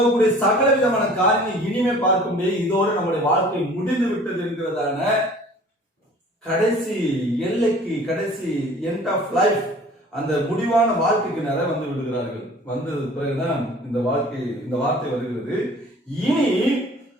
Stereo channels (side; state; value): both; normal; correlation 0.48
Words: சகல விதமான காரியங்களை இனிமே பார்க்க முடியாது. இதோடு நம்முடைய வாழ்க்கை முடிந்து விட்டது என்கிறதான கடைசி எல்லைக்கு, கடைசி எண்ட் ஆஃப் லைஃப், அந்த முடிவான வாழ்க்கைக்கு நிறைய வந்து விடுகிறார்கள். வந்தது பிறகுதான் இந்த வார்த்தை வருகிறது, இனி